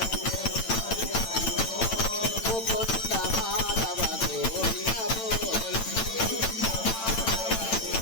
मुकुंद माधव गोविंद बोल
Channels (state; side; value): late; right; 8.9 ms